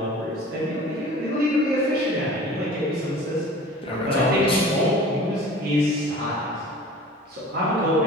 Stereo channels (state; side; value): normal; both; correlation 0.43